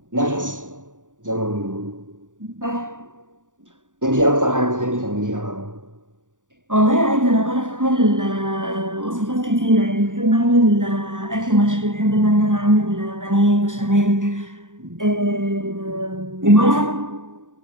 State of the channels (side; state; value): left; late; 0.87 ms